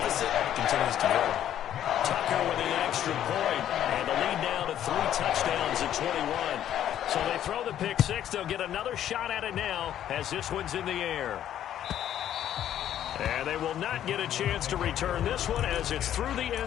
continues to grow. Tucker with an extra point, and the lead now to 3 touchdowns in 21. So they throw the pick 6. They'll get another shot at it now as this one's in the air. And they will not get a chance to return this one as it's through the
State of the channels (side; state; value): right; quieter; 11.0 dB